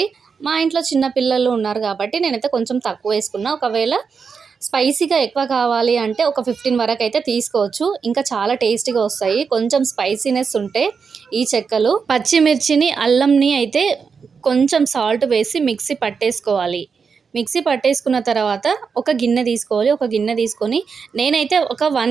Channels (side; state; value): left; quieter; 5.7 dB